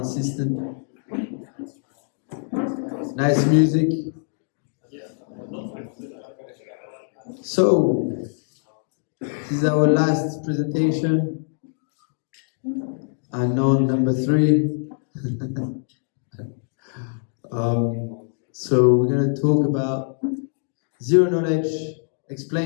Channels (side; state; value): right; silent; digital silence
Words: System. Nice music. So, this is our last presentation. Anon number 3. So we're going to talk about zero knowledge